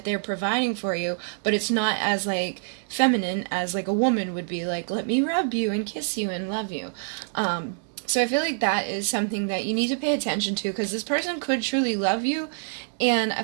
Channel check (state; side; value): silent; left; digital silence